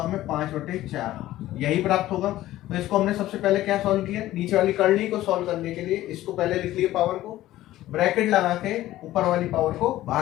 हमें, 5/4, यही प्राप्त होगा। तो इसको हमने सबसे पहले क्या सॉल्व किया, नीचे वाली करनी को सॉल्व करने के लिए इसको पहले लिख लिया पावर को, ब्रैकेट लगा के ऊपर वाली पावर को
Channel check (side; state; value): right; quieter; 15.0 dB